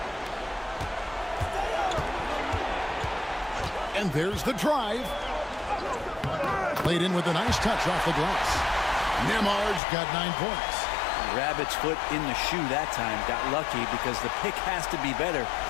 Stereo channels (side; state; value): right; drops out; at 9.8 s